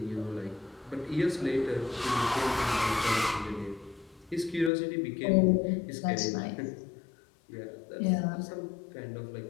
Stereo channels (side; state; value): right; drops out; at 4.7 s